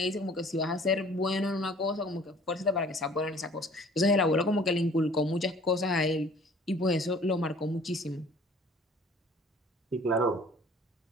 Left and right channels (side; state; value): both; normal; correlation 0.52